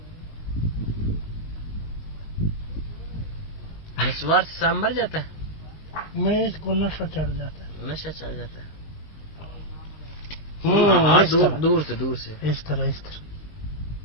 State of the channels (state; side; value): late; right; 19 ms